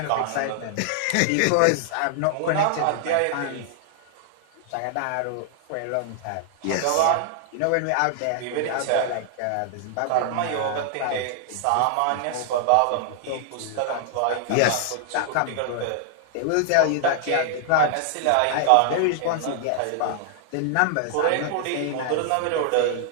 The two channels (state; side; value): different; both; correlation 0.00